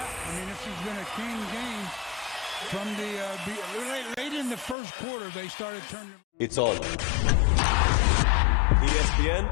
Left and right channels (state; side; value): drops out; right; at 4.8 s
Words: I mean, this has been a clean game. From the late in the first quarter, they started turning. It's on.